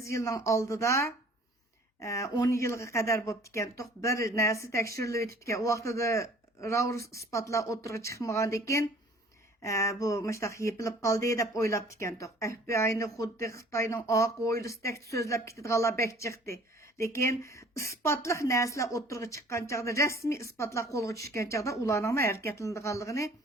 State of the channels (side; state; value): both; normal; correlation 0.51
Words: yilning oldida 10 yilga qadar bo'lib ekan, bir narsa tekshirilib o'tib ekan. U vaqtida raur isbotlar o'tirg'i chiqmagandan keyin bu mustaq yepilib qoldi deb o'ylab ekan. FBI'ni xuddi Xitoyning oq o'ylisidek so'zlab ketadiganlar bek chiqdi. Lekin isbotliq narsalar o'tirg'i chiqqan chaqda, rasmiy isbotlar qo'lga tushgan chaqda ularning harakatlanadiganligini